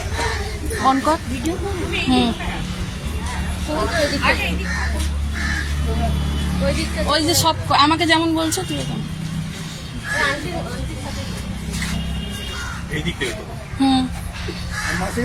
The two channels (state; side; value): identical; both; correlation 1.00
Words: অন কর। ওই যে সব আমাকে যেমন বলছো তুই এখন। হুম,